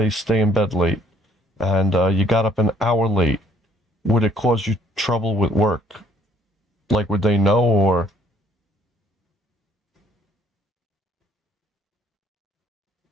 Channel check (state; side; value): normal; both; correlation 0.63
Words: stay in bed late, and you got up an hour late, would it cause you trouble with work? Like, would they know, or?